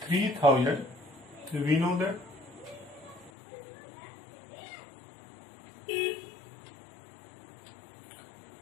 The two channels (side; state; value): right; drops out; at 3.3 s